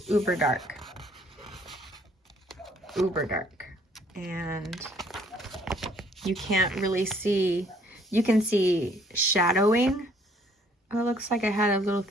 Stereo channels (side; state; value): both; normal; correlation 0.62